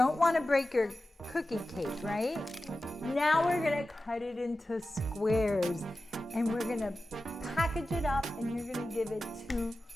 want to break your cookie cake, right? Now we're gonna cut it into squares, and we're gonna package it up, and you're gonna give it to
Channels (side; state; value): both; normal; correlation 0.94